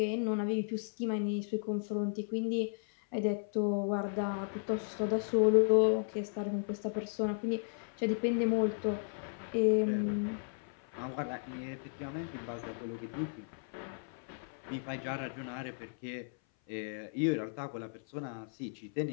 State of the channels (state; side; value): silent; right; 54 dB below the other